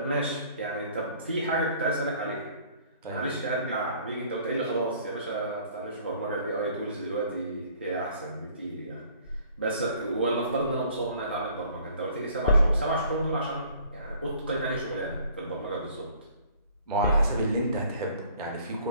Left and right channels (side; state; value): both; inverted; correlation -0.56